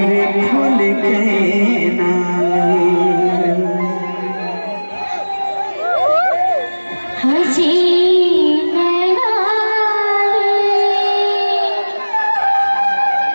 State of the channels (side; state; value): both; inverted; correlation -1.00